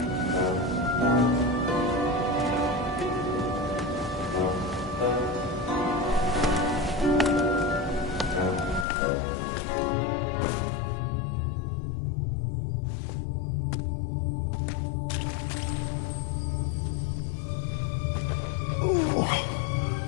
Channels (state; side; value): drops out; right; at 8.8 s